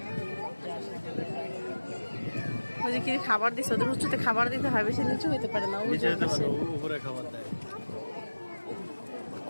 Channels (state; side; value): inverted; both; correlation -1.00